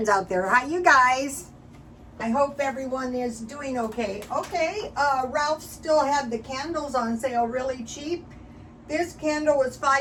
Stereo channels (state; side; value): identical; both; correlation 1.00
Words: out there. Hi, you guys. I hope everyone is doing okay. Ralph still had the candles on sale really cheap. This candle was